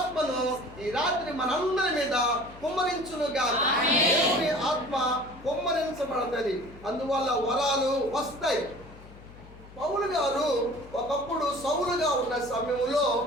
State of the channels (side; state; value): left; noise; hum, 19 dB below the sound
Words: ఈ రాత్రి మనందరి మీద కుమ్మరించునుగా. దేవుని ఆత్మ కుమ్మరించబడుతుంది, అందువల్ల వరాలు వస్తాయి. పౌలు గారు ఒకప్పుడు సౌలుగా ఉన్న సమయంలో